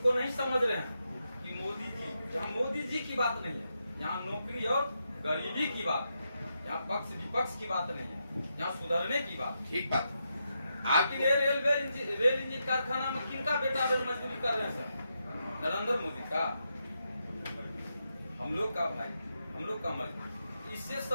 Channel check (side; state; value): both; inverted; correlation -0.84